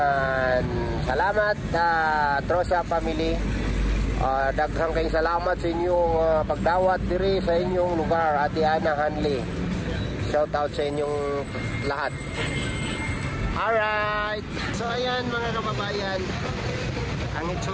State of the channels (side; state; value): both; identical; correlation 1.00